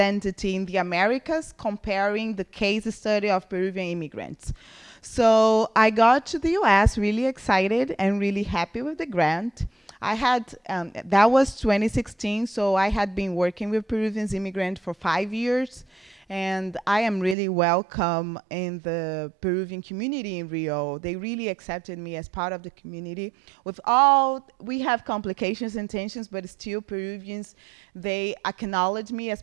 in the Americas, comparing the case study of Peruvian immigrants. So I got to the U.S. really excited and really happy with the grant. I had that was 2016, so I had been working with Peruvian immigrants for 5 years, and I am really welcome in the Peruvian community in Rio. They really accepted me as part of the community. With all, we have complications and tensions, but still Peruvians, they acknowledge me as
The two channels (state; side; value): drops out; left; at 17.4 s